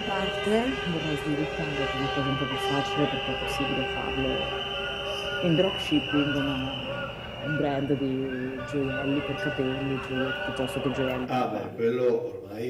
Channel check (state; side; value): identical; both; correlation 1.00